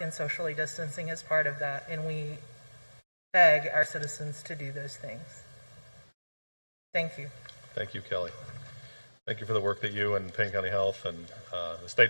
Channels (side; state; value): both; inverted; correlation -1.00